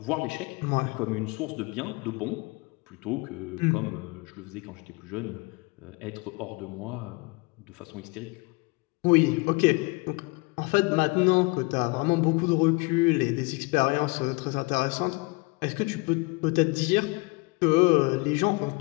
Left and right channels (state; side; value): quieter; right; 26.9 dB